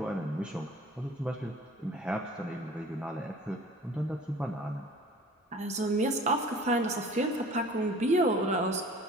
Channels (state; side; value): normal; both; correlation 0.46